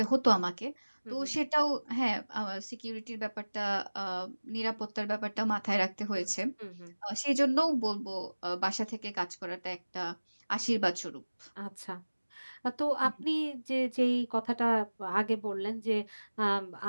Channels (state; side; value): inverted; both; correlation -1.00